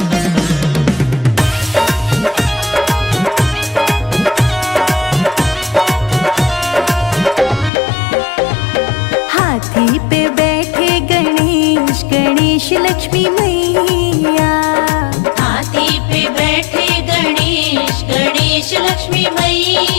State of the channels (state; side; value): drops out; right; at 7.7 s